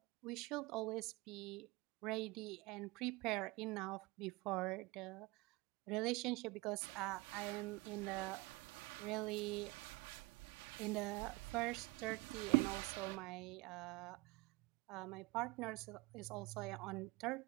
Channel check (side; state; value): left; quieter; 22.6 dB